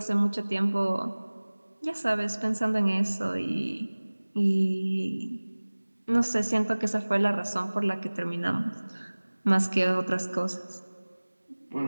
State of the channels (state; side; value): inverted; both; correlation -1.00